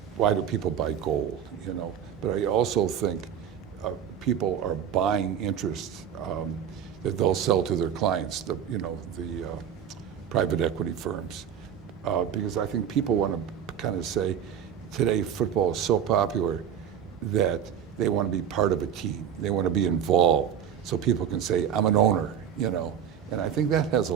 why do people buy gold, But I also think people are buying interest that they'll sell to their clients, the private equity firms. Because I think people want to kind of say, today football is so popular that they want to be part of a team. They want to be involved. So people can say, I'm an owner, And I think that has a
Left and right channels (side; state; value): left; quieter; 8.7 dB